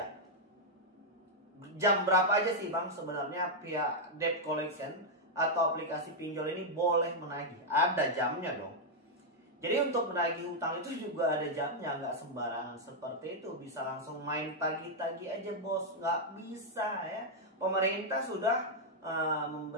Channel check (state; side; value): normal; both; correlation -0.03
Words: Jam berapa aja sih Bang sebenarnya pihak debt collection atau aplikasi pinjol ini boleh menagih? Ada jamnya dong. Jadi untuk menagih hutang itu juga ada jamnya, nggak sembarangan seperti itu bisa langsung main tagih-tagih aja bos, nggak bisa ya. Pemerintah sudah